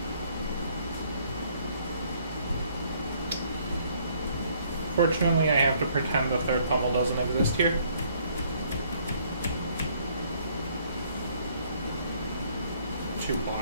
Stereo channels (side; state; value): both; inverted; correlation -0.64